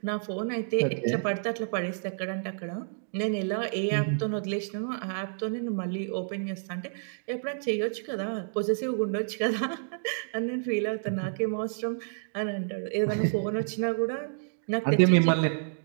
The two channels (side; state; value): left; silent; digital silence